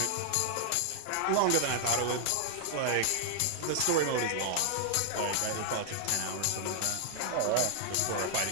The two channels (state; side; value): different; both; correlation 0.00